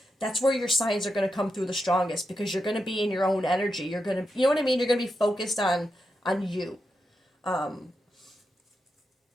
that's where your signs are going to come through the strongest because you're going to be in your own energy. You're going to, you know what I mean? You're going to be focused on you.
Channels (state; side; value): normal; both; correlation 0.86